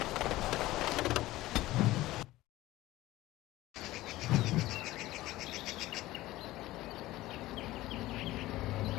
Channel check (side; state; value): right; quieter; 17.1 dB